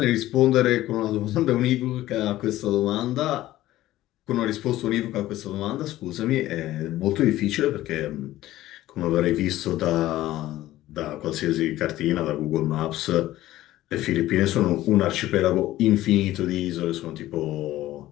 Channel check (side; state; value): right; quieter; 15.2 dB